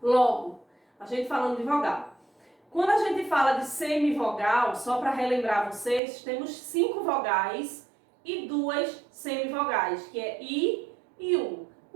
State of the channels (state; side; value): drops out; left; at 6.0 s